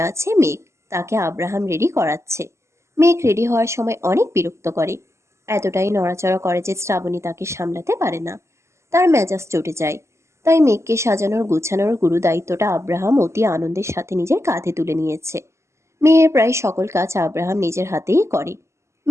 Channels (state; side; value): late; left; 0.13 ms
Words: আছে মেঘ। তাকে আব্রাহাম রেডি করাচ্ছে। মেঘ রেডি হওয়ার সময় অনেক বিরক্ত করে। এতটাই নড়াচড়া করে যে শ্রাবণী তাকে সামলাতে পারে না। তার মেজাজ চটে যায়। তাই মেঘকে সাজানোর গুছানোর গুরু দায়িত্বটা আব্রাহাম অতি আনন্দের সাথে নিজের কাঁধে তুলে নিয়েছে। মেয়ের প্রায় সকল কাজ আব্রাহাম নিজের হাতেই করে।